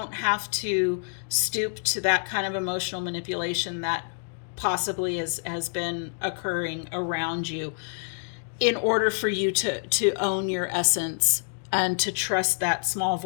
have to stoop to that kind of emotional manipulation that possibly has been occurring around you in order for you to own your essence and to trust that small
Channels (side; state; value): right; silent; 59 dB below the other